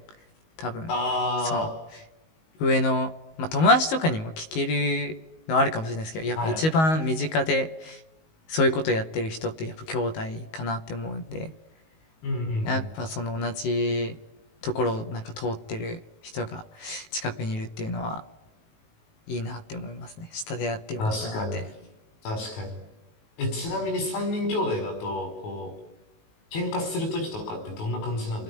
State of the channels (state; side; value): late; right; 19 ms